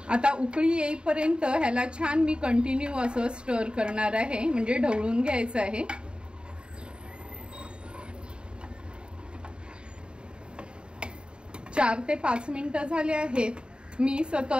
आता उकळी येईपर्यंत ह्याला छान मी कंटिन्यू असं स्टर करणार आहे, म्हणजे ढवळून घ्यायचं आहे। चार ते 5 मिनिटं झाले आहेत। मी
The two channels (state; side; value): late; left; 0.052 ms